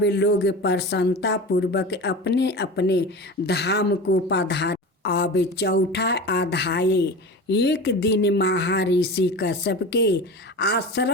लोग प्रसन्नता पूर्वक अपने अपने धाम को पधारे। अब चौथा अध्याय। एक दिन महर्षि कश्यप के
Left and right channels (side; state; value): both; normal; correlation 0.31